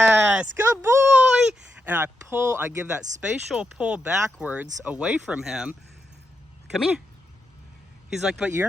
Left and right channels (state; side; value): normal; both; correlation 0.84